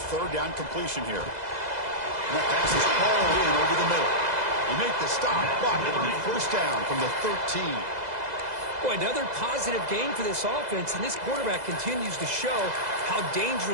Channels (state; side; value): late; left; 2.0 ms